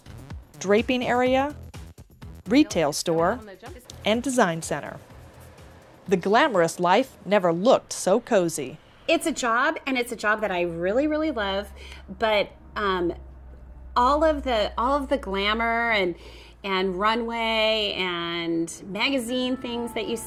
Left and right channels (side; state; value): both; identical; correlation 1.00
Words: draping area, retail store, and design center. The glamorous life never looked so cozy. It's a job, and it's a job that I really, really love, but all of the glamour and runway and magazine things that you